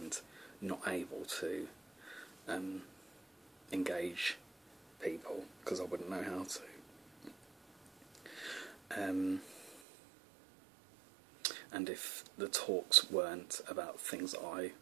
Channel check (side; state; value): left; drops out; at 9.8 s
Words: not able to engage people because I wouldn't know how to. And if the talks weren't about things I